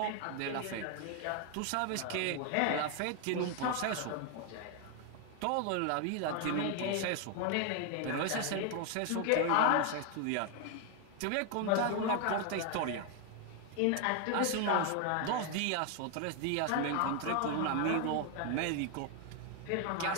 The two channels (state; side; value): different; both; correlation 0.01